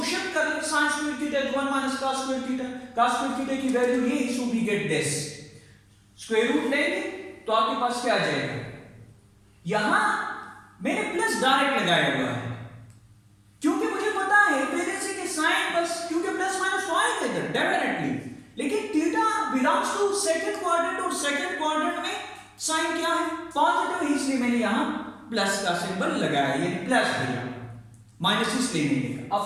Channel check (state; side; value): identical; both; correlation 1.00